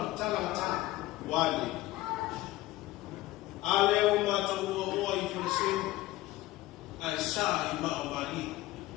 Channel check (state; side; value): quieter; right; 17.2 dB